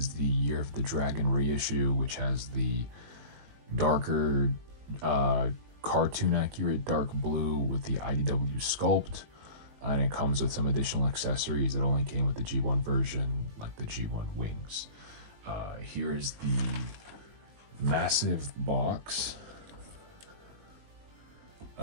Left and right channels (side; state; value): left; late; 19 ms